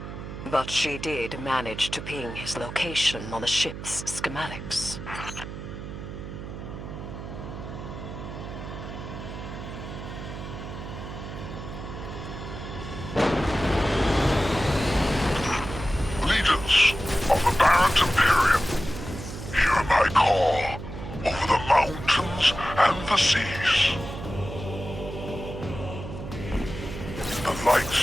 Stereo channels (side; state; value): right; noise; hum, 9 dB below the sound